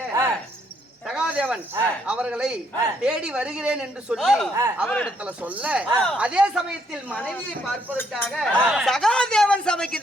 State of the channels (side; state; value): both; normal; correlation 0.71